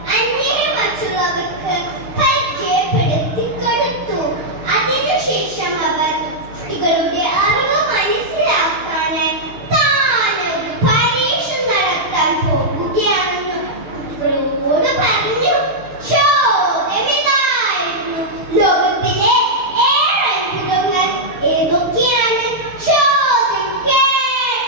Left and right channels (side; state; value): left; late; 6.6 ms